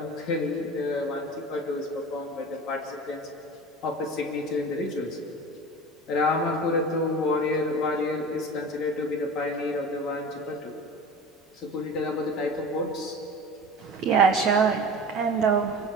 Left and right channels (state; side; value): normal; both; correlation 0.35